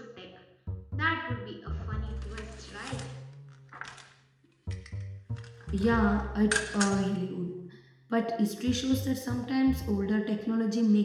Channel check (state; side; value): identical; both; correlation 1.00